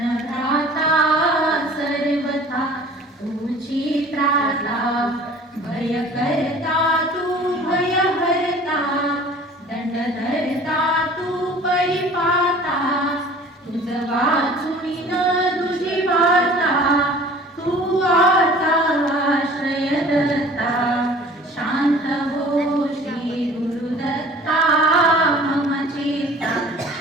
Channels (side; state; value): both; normal; correlation 0.47